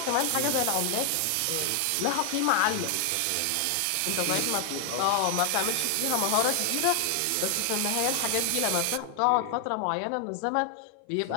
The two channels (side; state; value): both; different; correlation 0.00